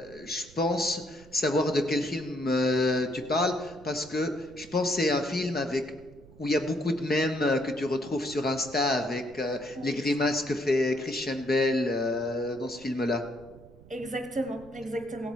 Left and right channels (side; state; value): right; noise; rumble, 22 dB below the sound